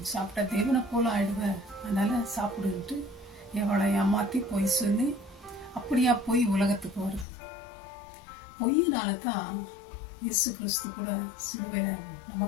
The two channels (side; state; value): right; drops out; at 7.2 s